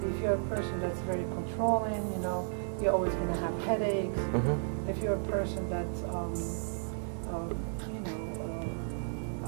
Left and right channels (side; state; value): left; silent; 56 dB below the other